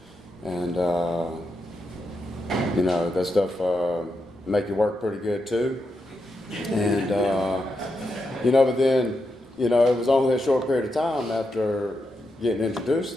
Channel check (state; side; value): normal; both; correlation 0.85